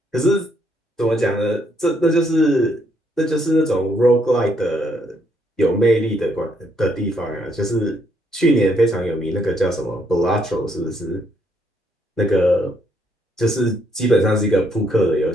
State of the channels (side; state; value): both; normal; correlation 0.72